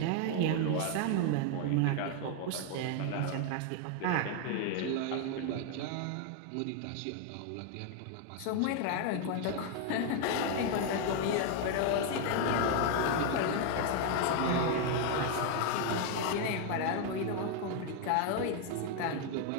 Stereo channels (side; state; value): both; different; correlation 0.00